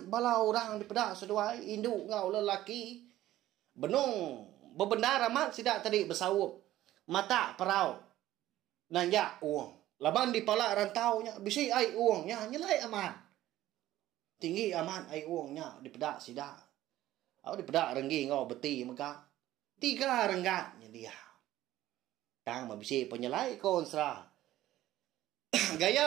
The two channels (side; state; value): left; quieter; 14.5 dB